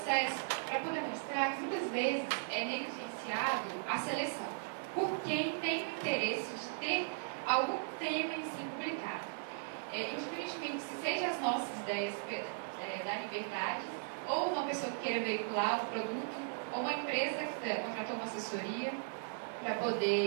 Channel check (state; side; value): silent; left; digital silence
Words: para poder mostrar que muitas vezes é negligenciado a seleção por quem tem o interesse de ter algum tema em si publicado. Indiferentemente se seja as nossas ideias da liberdade, ou uma pessoa que queira veicular um produto, ou uma empresa que contratou uma assessoria para